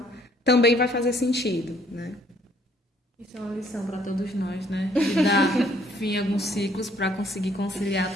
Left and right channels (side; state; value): both; normal; correlation 0.63